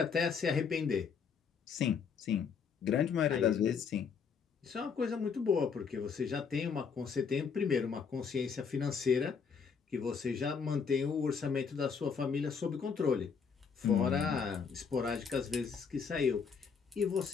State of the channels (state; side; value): quieter; right; 6.1 dB